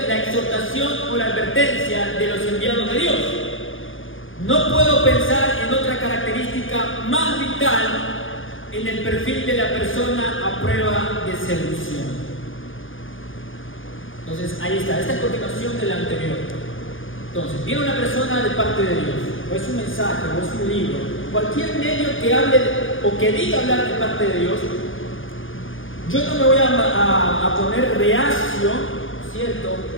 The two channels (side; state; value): right; late; 0.58 ms